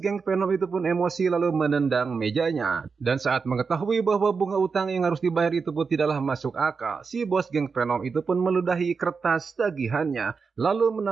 Venom itu pun emosi lalu menendang mejanya. Dan saat mengetahui bahwa bunga utang yang harus dibayar itu pun tidaklah masuk akal, si bos geng Venom itu pun meludahi kertas tagihannya, lalu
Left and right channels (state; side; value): quieter; left; 5.2 dB